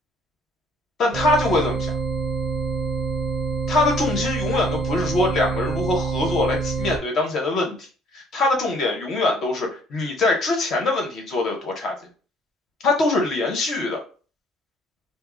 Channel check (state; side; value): normal; both; correlation 0.60